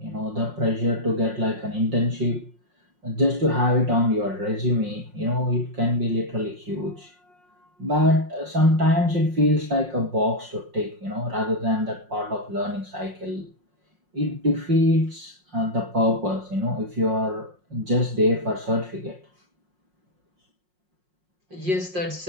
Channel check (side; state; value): left; late; 5.5 ms